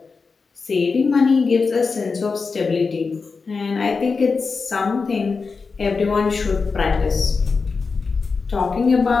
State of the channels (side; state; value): right; quieter; 4.7 dB